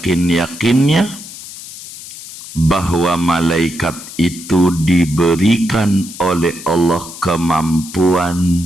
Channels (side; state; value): left; noise; hiss, 14 dB below the sound